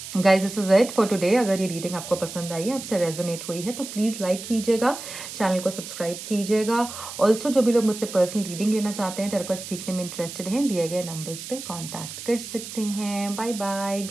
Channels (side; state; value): right; noise; hiss, 10 dB below the sound